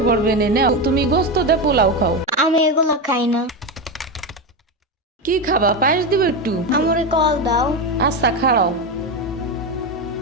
পড়বে নে, নাও তুমি গোস্ত দে পোলাও খাও। আমি এগুলো খাই না। কি খাবা? পায়েস দিব একটু? আমরে কল দাও। আচ্ছা খাড়াও।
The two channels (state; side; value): normal; both; correlation 0.15